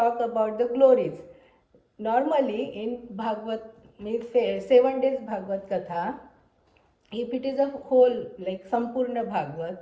about the glories. Normally in Bhagavad, means 7 days Bhagavad Katha, if it is a whole like Sampurna Bhagavad,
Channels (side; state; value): both; identical; correlation 1.00